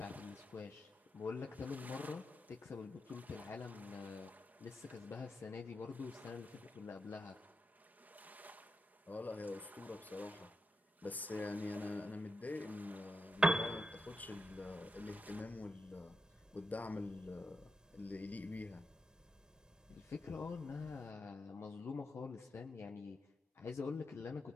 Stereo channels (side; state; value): both; normal; correlation 0.87